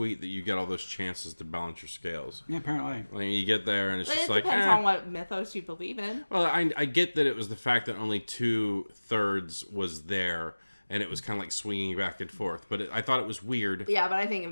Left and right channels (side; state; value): both; inverted; correlation -1.00